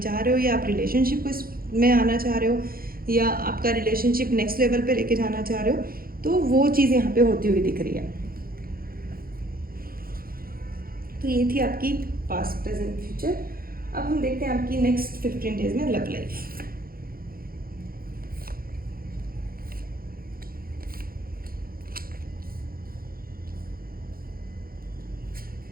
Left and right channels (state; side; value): late; left; 0.42 ms